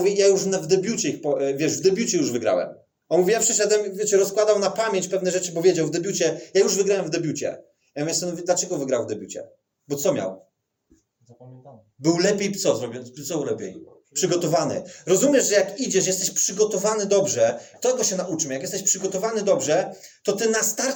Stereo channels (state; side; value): identical; both; correlation 1.00